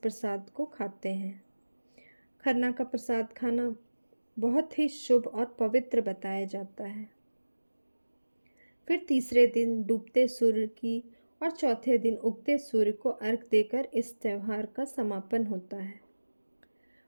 को खाते हैं। खरना का प्रसाद खाना बहुत ही शुभ और पवित्र बताया जाता है। फिर तीसरे दिन डूबते सूर्य की और चौथे दिन उगते सूर्य को अर्घ देकर इस त्यौहार का समापन होता है।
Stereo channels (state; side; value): inverted; both; correlation -1.00